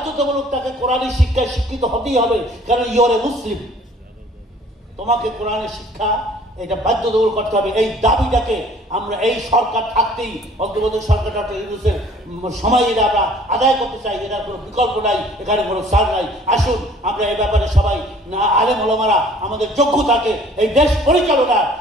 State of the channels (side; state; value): both; normal; correlation 0.54